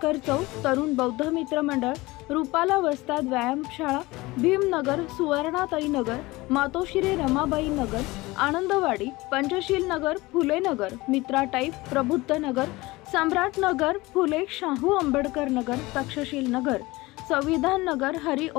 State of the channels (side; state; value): right; quieter; 21.0 dB